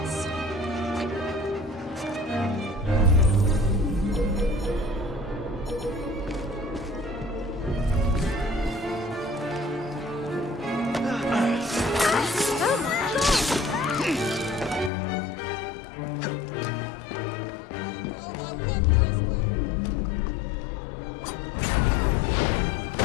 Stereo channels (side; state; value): right; drops out; at 14.9 s